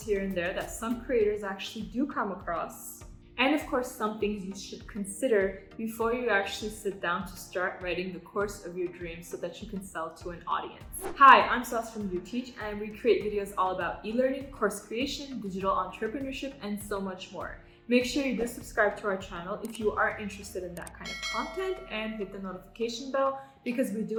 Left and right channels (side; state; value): both; identical; correlation 1.00